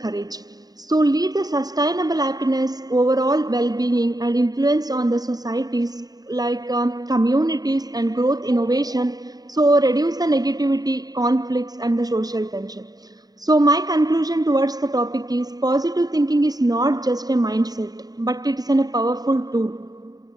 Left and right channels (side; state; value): left; late; 0.18 ms